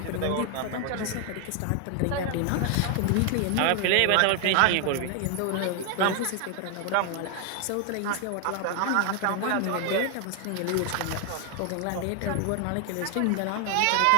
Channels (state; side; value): different; both; correlation 0.00